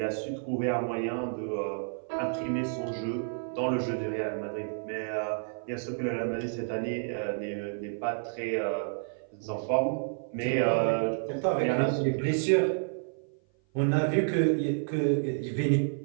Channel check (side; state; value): left; silent; 55 dB below the other